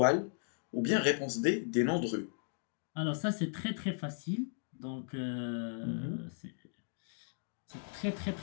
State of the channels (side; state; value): right; silent; digital silence